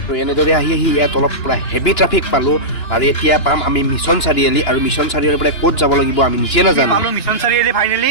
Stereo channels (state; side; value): late; right; 2.9 ms